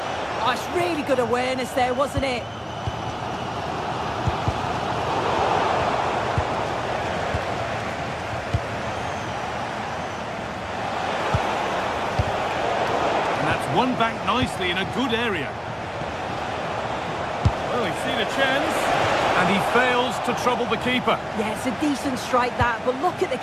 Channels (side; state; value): both; identical; correlation 1.00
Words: Oh, it's really good awareness there, wasn't it? Won back nicely in a good area. Well, he's seen a chance, and he fails to trouble the keeper. Yeah, it's a decent strike that, but look at the